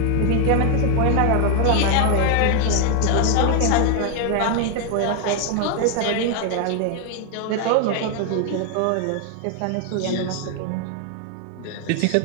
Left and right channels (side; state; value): both; different; correlation 0.00